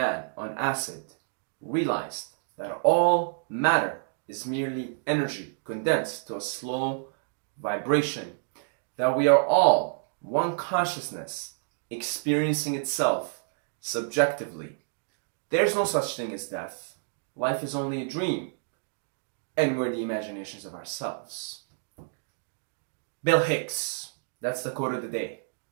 on acid realized that all matter is merely energy condensed to a slow vibration, that we are all one consciousness experiencing itself subjectively. There's no such thing as death. Life is only a dream, and we're the imaginations of ourselves. Bill Hicks. That's the quote of the day.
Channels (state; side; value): silent; left; digital silence